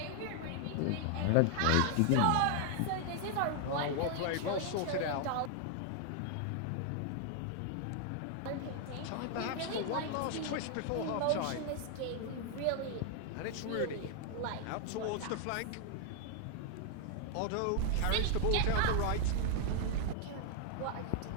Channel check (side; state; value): both; different; correlation 0.00